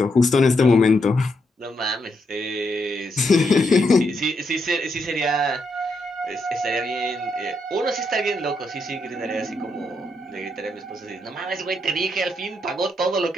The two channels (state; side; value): normal; both; correlation 0.79